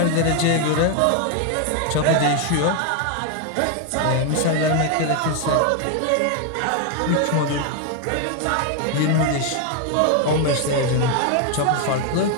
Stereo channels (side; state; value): both; different; correlation 0.01